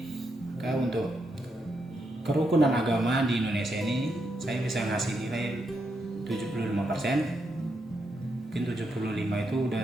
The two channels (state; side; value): normal; both; correlation 0.81